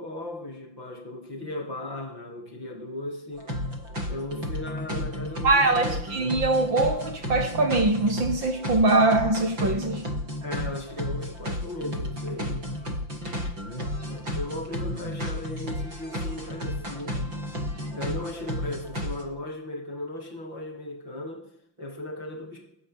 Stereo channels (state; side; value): late; left; 5.8 ms